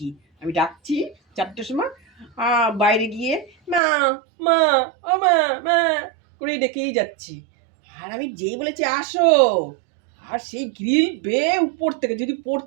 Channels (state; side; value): drops out; left; at 3.8 s